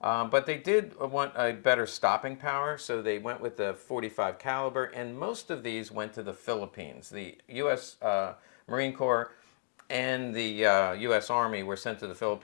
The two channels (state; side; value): silent; right; digital silence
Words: But they did want a better stopping power, so they went with the .45 caliber, and most of these went to the Philippines. The U.S. Marine Corps and the U.S. Army were sent to the